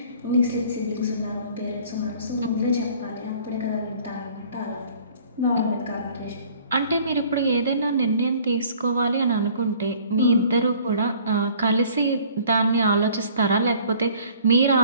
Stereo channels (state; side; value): inverted; both; correlation -0.53